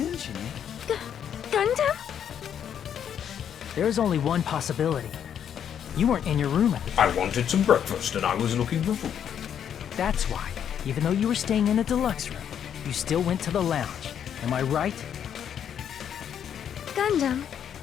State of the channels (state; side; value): quieter; right; 8.9 dB